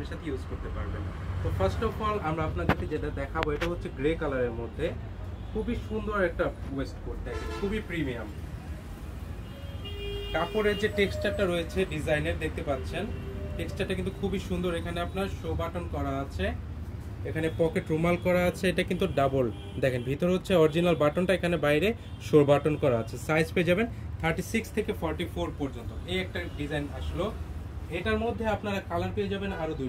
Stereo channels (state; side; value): identical; both; correlation 1.00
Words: সাথে ইউজ করতে পারবেন। তো ফার্স্ট অফ অল আমরা আপনাদেরকে যেটা দেখাবো এটা হচ্ছে গ্রে কালারের মধ্যে খুবই সুন্দর একটা ওয়েস্টকোট, দেখেন খুবই প্রিমিয়াম। কাপড়ের যে টেক্সচারটা রয়েছে ডিজাইনের দেখতে পাচ্ছেন, টেক্সচারটা কিন্তু খুবই সুন্দর। এখানে আপনার শো বাটন করা আছে, এখানে পকেট রুমাল করা আছে, এটা কিন্তু ডাবল। দেখেন ভিতরে হচ্ছে অরিজিনাল বাটনটা, এখানে বাইরে শো বাটন করা আছে। সাইজ পেয়ে যাবেন 36 থেকে 44 পর্যন্ত। এই একটা ডিজাইন আসলো। এটার মধ্যে আপনারা কালার পেয়ে যাবেন আরো